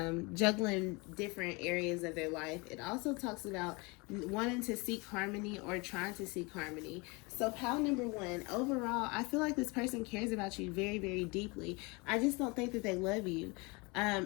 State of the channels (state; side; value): quieter; right; 27.4 dB